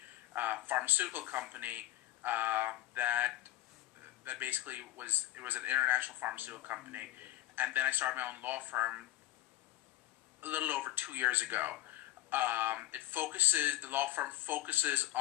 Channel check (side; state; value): right; quieter; 15.9 dB